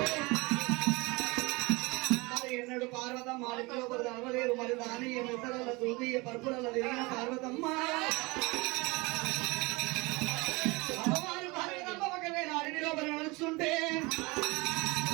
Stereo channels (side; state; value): left; quieter; 24.9 dB